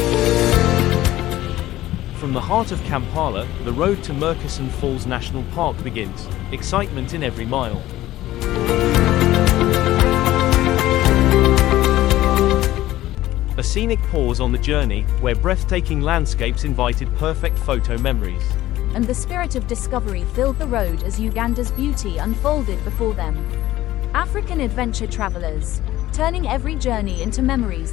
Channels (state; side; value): quieter; right; 15.3 dB